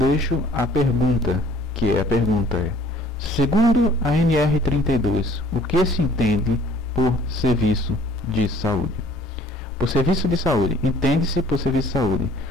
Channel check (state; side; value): normal; both; correlation 0.54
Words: a pergunta, segundo a NR32, o que se entende por serviço de saúde? Por serviço de saúde, entende-se por serviço de saúde